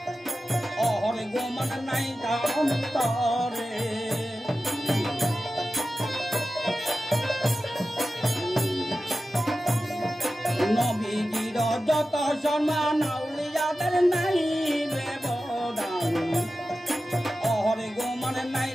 অহরে গোমান নাই তার অন্তরে নবীজির যত সম্মান আউলিয়াদের নাই ব্যবধান অহরে গোমান নাই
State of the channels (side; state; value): both; normal; correlation 0.94